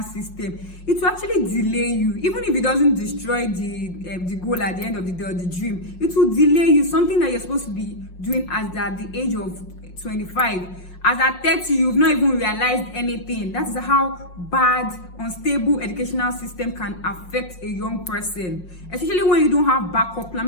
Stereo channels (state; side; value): late; right; 5.6 ms